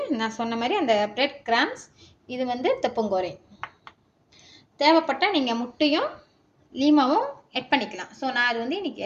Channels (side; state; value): both; identical; correlation 1.00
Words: நான் சொன்ன மாதிரி அந்த பிரெட் கிராம்ஸ், இது தப்பங்கோரை. தேவைப்பட்டால் நீங்கள் முட்டையும் லீமாவும் ஆட் பண்ணிக்கலாம். ஸோ நான் அது இன்னைக்கு